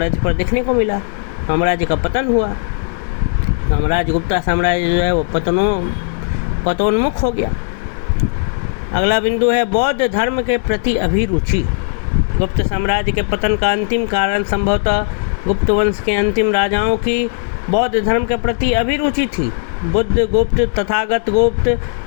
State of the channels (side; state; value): right; silent; 68 dB below the other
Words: पर देखने को मिला। साम्राज्य का पतन हुआ। साम्राज्य गुप्ता साम्राज्य जो है वो पतोन्मुख हो गया। अगला बिंदु है बौद्ध धर्म के प्रति अभिरुचि। गुप्त साम्राज्य के पतन का अंतिम कारण संभवतः गुप्त वंश के अंतिम राजाओं की बौद्ध धर्म के प्रति अभिरुचि थी। बुद्ध गुप्त, तथागत गुप्त